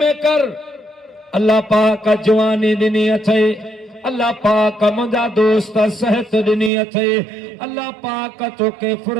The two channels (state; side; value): drops out; left; at 6.7 s